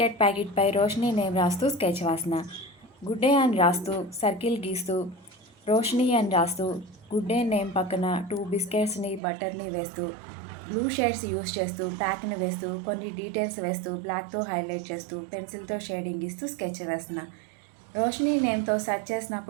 ప్యాకెట్పై Roshini name రాస్తూ sketch వాసన. Good day అని రాస్తూ సర్కిల్ గీస్తూ రోషిని అని రాస్తూ గుడ్ డే నేమ్ పక్కన 2 బిస్కెట్స్ని బటర్ని వేస్తూ బ్లూ షేడ్స్ యూస్ చేస్తూ ప్యాక్ని వేస్తూ కొన్ని డీటెయిల్స్ వేస్తూ బ్లాక్తో హైలైట్ చేస్తూ పెన్సిల్తో షేడింగ్ ఇస్తూ స్కెచ్ వేస్తున్నా. రోషిని నేమ్తో సెర్చ్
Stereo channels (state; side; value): drops out; left; at 9.2 s